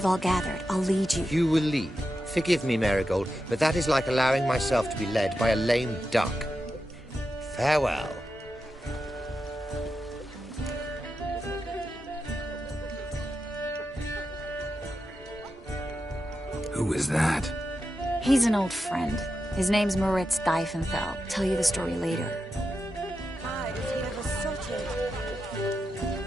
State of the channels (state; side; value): normal; both; correlation 0.89